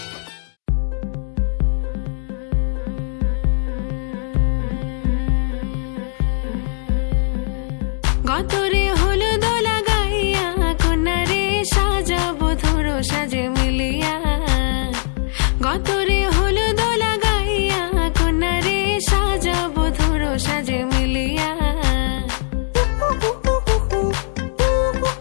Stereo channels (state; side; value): silent; right; digital silence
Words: গতরে হলুদ লাগাইয়া কন্যারে সাজাবো ধরো সাজে মিলিয়া গতরে হলুদ লাগাইয়া কন্যারে সাজাবো ধরো সাজে মিলিয়া